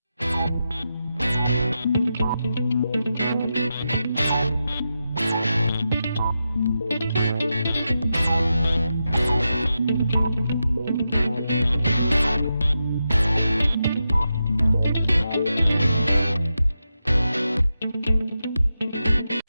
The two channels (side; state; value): both; inverted; correlation -0.88